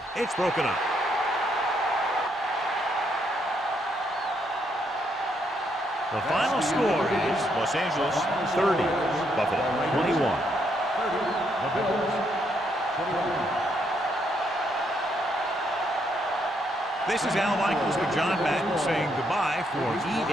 It's broken up. The final score is Los Angeles 30, Buffalo 21. This is Al Michaels with John Madden saying goodbye for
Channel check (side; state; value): both; normal; correlation 0.75